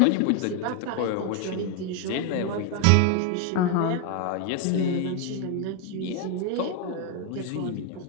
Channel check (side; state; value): both; different; correlation 0.00